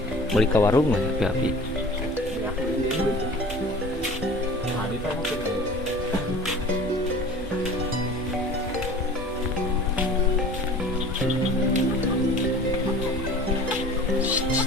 beli ke warung mah ya api.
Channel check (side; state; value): both; normal; correlation 0.42